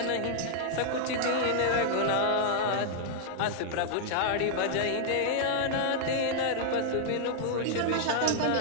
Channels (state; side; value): different; both; correlation -0.01